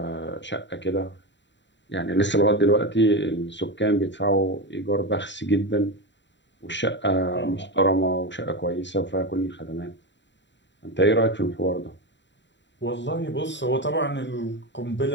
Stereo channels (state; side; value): late; right; 0.52 ms